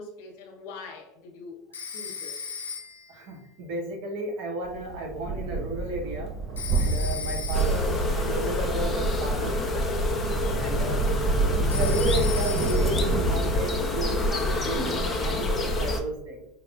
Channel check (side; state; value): both; normal; correlation 0.36